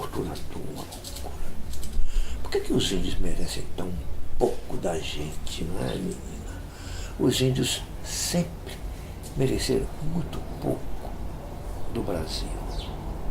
Por que os índios merecem tão pouco da gente, não é, menina? Os índios sempre mereceram muito pouco do Brasil.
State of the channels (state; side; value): identical; both; correlation 1.00